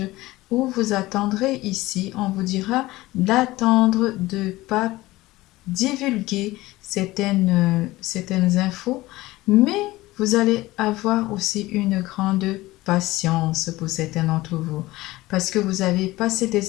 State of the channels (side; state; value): right; quieter; 18.7 dB